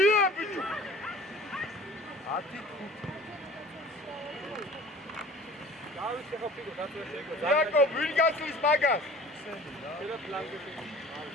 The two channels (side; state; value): both; normal; correlation 0.45